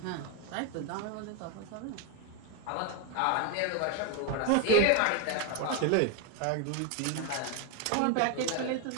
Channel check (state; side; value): different; both; correlation 0.01